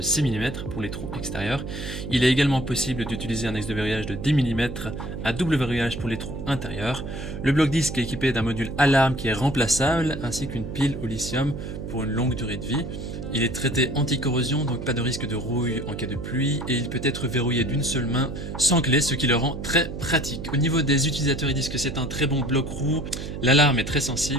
mm pour les trous extérieurs. Il est également possible d'utiliser un axe de verrouillage de 10 mm à double verrouillage pour les trous intérieurs. Le bloc disque est équipé d'un module alarme qui est remplaçable ainsi qu'une pile au lithium pour une longue durée de vie. Il est traité anti-corrosion, donc pas de risque de rouille en cas de pluie, et il peut être verrouillé d'une seule main sans clé, ce qui le rend très pratique. Au niveau des utilisateurs, ils disent que c'est un très bon bloc roue, l'alarme est très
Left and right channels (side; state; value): right; noise; hum, 7 dB below the sound